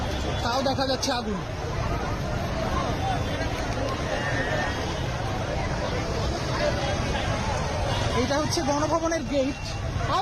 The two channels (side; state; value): both; identical; correlation 1.00